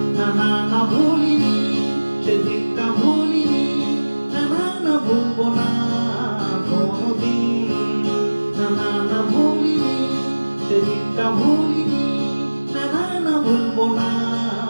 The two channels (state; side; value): inverted; both; correlation -1.00